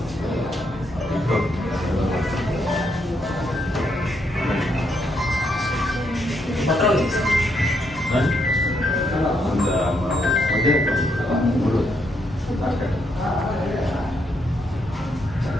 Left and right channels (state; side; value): normal; both; correlation 0.76